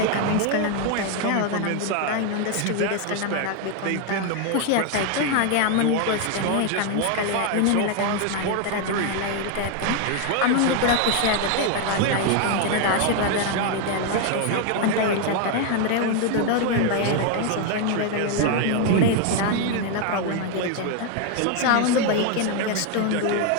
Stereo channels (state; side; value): different; both; correlation 0.01